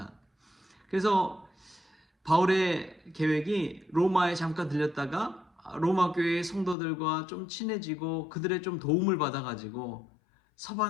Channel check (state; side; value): drops out; right; at 6.8 s